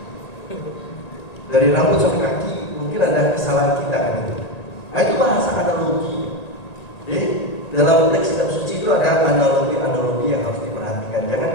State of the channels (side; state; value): right; late; 1.9 ms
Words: Dari rambut sampai kaki, mungkin ada kesalahan kita gitu. Nah, itu bahasa analogi. Jadi dalam teks kitab suci itu ada analogi-analogi yang harus diperhatikan. Jangan